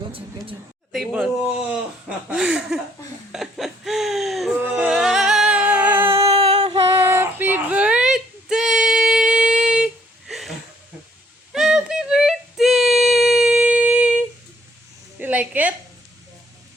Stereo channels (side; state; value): both; normal; correlation 0.65